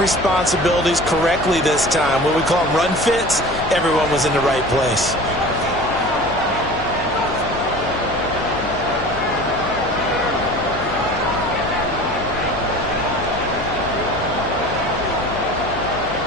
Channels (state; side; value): noise; left; hum, 11 dB below the sound